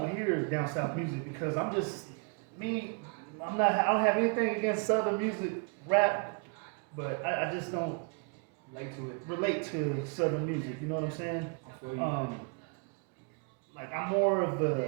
hear down south music because I don't have anything against southern music, rap, but I just don't relate to southern music, you know what I'm saying? I feel you. I'm more of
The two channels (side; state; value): left; quieter; 37.5 dB